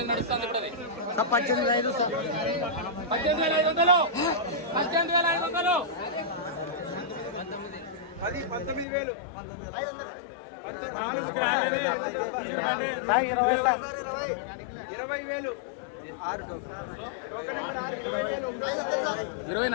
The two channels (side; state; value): right; drops out; at 8.8 s